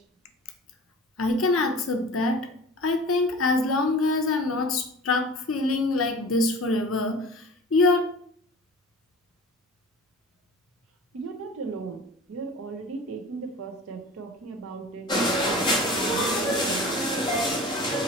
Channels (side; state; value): both; normal; correlation 0.39